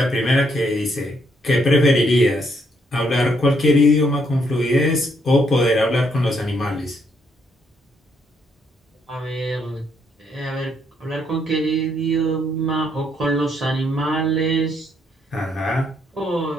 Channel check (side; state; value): both; normal; correlation 0.73